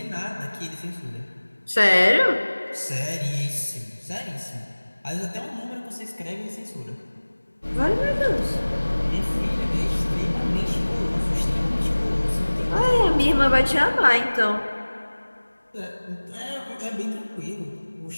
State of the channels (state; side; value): inverted; both; correlation -1.00